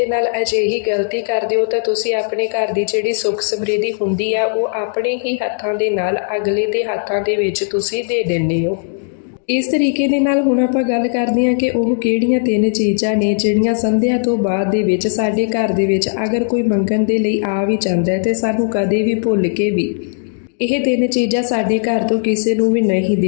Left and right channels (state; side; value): silent; right; digital silence